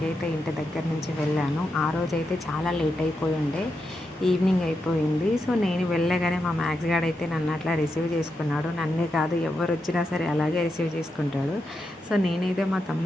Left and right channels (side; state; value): both; normal; correlation 0.86